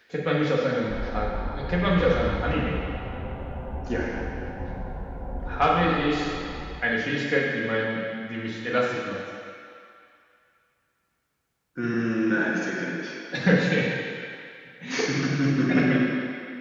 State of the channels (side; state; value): both; identical; correlation 1.00